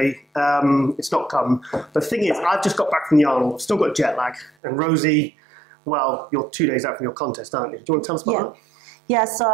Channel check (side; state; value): left; drops out; at 4.5 s